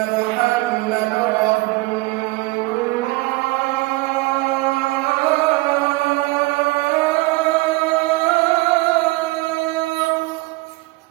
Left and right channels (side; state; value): left; quieter; 22.0 dB